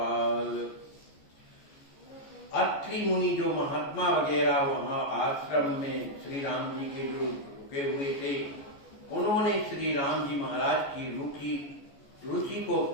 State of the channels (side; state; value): right; late; 14 ms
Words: अत्रि मुनि जो महात्मा वगैरह वहां आश्रम में श्री राम जी के जो रुके हुए थे, उन्होंने श्री राम जी महाराज की रुचि को